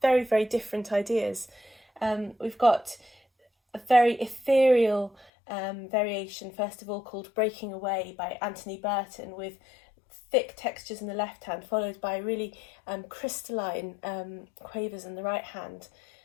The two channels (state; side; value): drops out; right; at 5.2 s